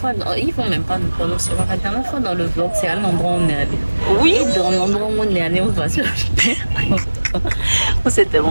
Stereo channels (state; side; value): inverted; both; correlation -1.00